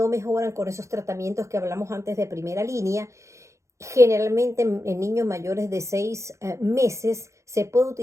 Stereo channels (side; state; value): left; late; 0.14 ms